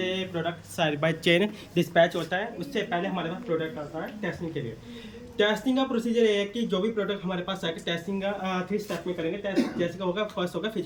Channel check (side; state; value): both; identical; correlation 1.00